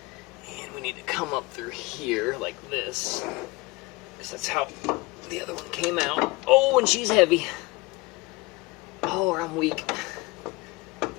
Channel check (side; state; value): right; quieter; 23.1 dB